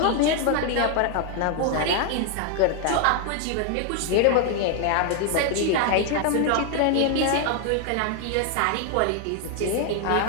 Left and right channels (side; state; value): both; different; correlation 0.00